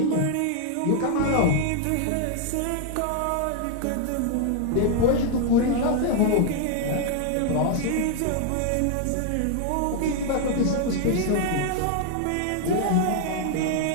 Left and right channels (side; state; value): both; different; correlation 0.00